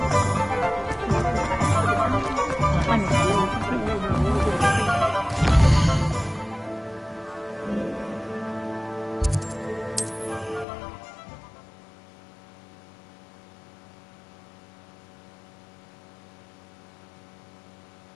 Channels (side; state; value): right; drops out; at 10.7 s